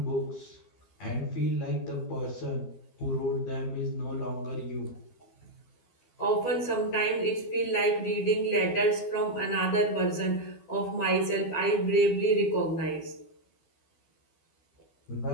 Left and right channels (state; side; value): late; right; 12 ms